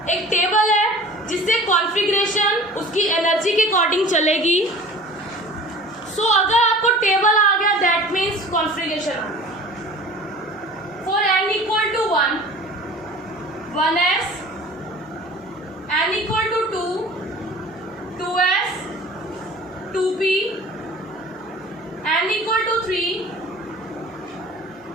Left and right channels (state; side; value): normal; both; correlation 0.43